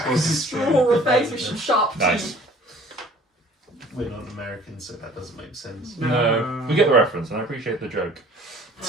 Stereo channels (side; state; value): both; normal; correlation 0.51